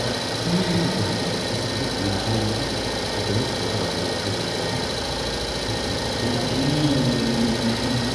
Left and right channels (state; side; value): identical; both; correlation 1.00